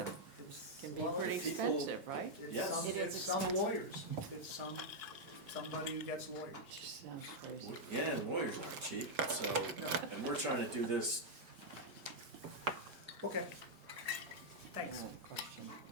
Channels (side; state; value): left; late; 5.2 ms